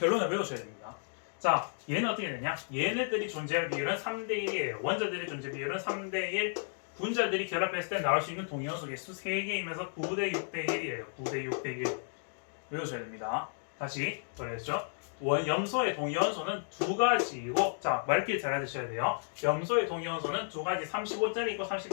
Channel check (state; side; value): silent; right; digital silence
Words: 외우셔야 됩니다. 자, 얘는 어떻게 되냐? 얘네들이 존재할 비율은 3대1이에요. 원자들의 존재 비율은 3대1, 분자들이 결합했을 때 나올 수 있는 동위원소 개수 3개이면서 9대 6대 1이에요. 9대 6대 1 외우셔야 됩니다. 다시 그랬죠? 염소의 동위원소는 두 가지이고, 자, 말길 잘 알아두셔야 돼요. 염소의 동위원소는 두 가지 35짜리 있고